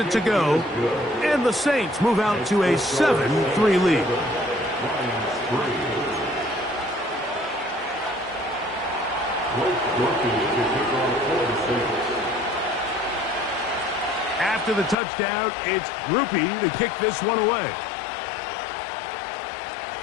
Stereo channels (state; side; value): drops out; right; at 15.0 s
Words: to go. And the Saints move out to a 7-3 lead. After the touchdown, it's Grupe to kick this one away.